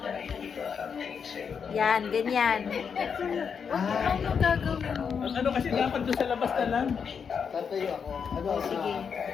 Yan, ganyan. Ano mo gagawin mo? Ano kasi dapat doon sa labas na lang. Tatayo ako. Ano? Sige.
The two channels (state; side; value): quieter; right; 6.6 dB